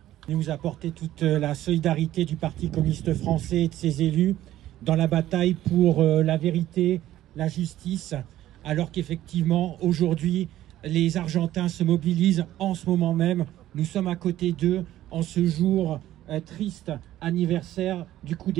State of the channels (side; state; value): left; quieter; 13.7 dB